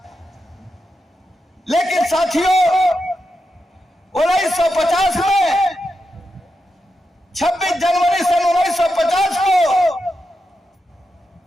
लेकिन साथियों, 1950 में 26 जनवरी सन 1950 को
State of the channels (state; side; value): normal; both; correlation 0.87